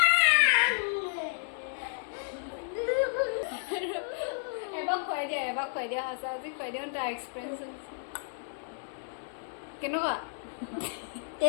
এবাৰ খুৱাই দিয়া সঁচা আজি খুৱাই দিয়া তাৰ এক্সপিৰিয়েঞ্চ কেনেকুৱা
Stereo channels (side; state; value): right; silent; 57 dB below the other